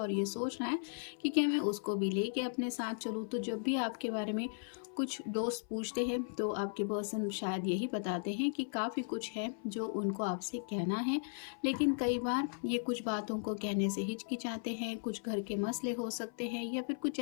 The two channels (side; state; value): right; silent; 53 dB below the other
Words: ये सोच रहा है कि क्या मैं उसको भी लेके अपने साथ चलूँ। तो जब भी आपके बारे में कुछ दोस्त पूछते हैं तो आपके पर्सन शायद यही बताते हैं कि काफ़ी कुछ है जो उनको आपसे कहना है, लेकिन कई बार ये कुछ बातों को कहने से हिचकिचाते हैं। कुछ घर के मसले हो सकते हैं या फिर कुछ